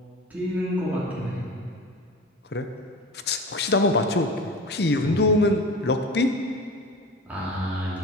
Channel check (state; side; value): normal; both; correlation 0.33